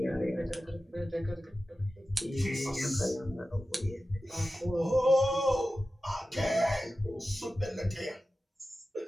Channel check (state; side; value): normal; both; correlation 0.94